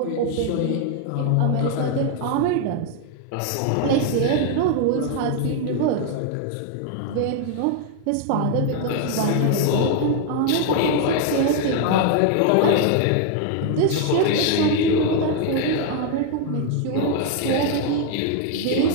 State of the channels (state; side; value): different; both; correlation 0.01